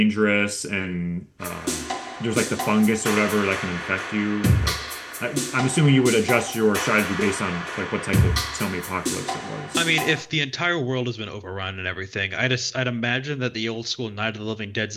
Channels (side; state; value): both; identical; correlation 1.00